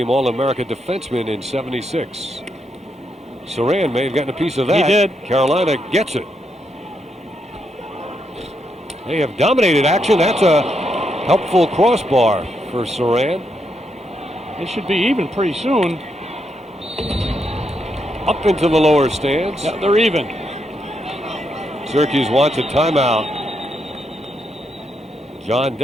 All-America defenseman in '76. Surran may have gotten a piece of that. He did. Carolina gets it. They have dominated action. That's a helpful crossbar for Surran. It should be even pretty soon. Up into the lower stands. Yeah, they're even. Syracuse wants a timeout. John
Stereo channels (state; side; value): normal; both; correlation 0.80